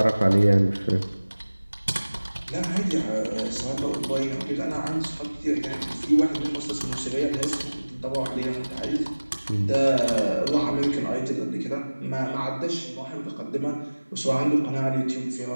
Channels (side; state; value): both; inverted; correlation -1.00